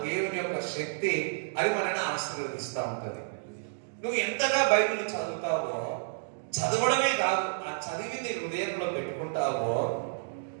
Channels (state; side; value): silent; left; digital silence